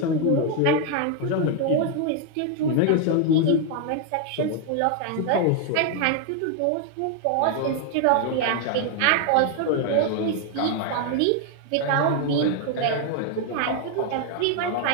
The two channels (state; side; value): different; both; correlation 0.00